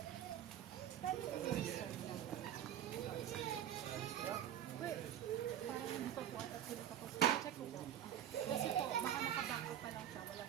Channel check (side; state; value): left; quieter; 10.7 dB